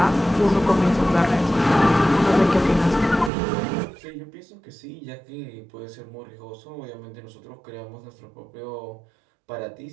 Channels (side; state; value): left; drops out; at 3.3 s